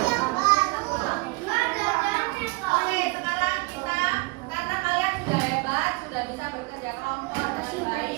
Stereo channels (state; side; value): quieter; left; 26.4 dB